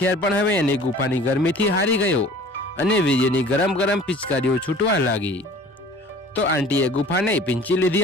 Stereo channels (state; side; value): normal; both; correlation 0.47